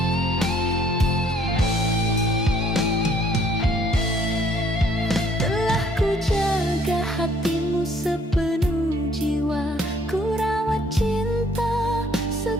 Hatimu sepenuh jiwa, ku rawat cinta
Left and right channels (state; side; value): normal; both; correlation 0.62